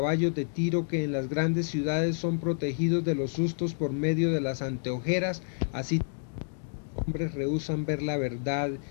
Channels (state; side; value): silent; right; digital silence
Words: de tiro que en las grandes ciudades son protegidos de los sustos por medio de las anteojeras, así los hombres rehúsan ver la verdad,